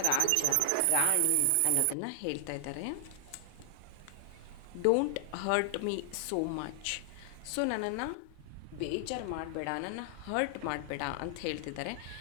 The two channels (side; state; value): both; different; correlation 0.00